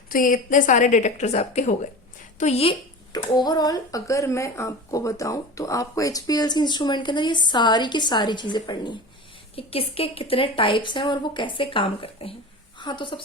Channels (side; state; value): both; normal; correlation 0.32